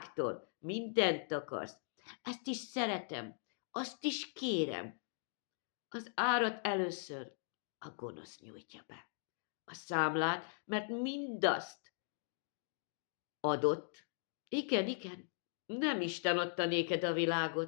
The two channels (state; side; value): silent; right; digital silence